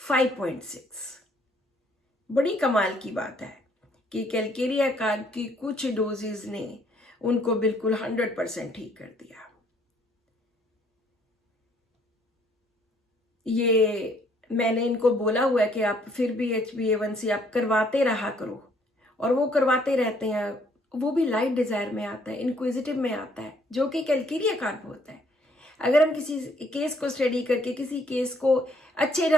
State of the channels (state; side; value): normal; both; correlation 0.65